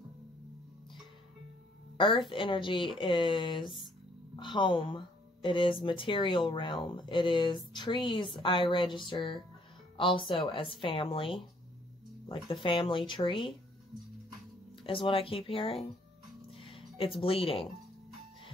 Earth energy is home. It is material realm. It is trees. I register also as family. Like the family tree is what I keep hearing. It's bleeding.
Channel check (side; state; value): both; normal; correlation 0.65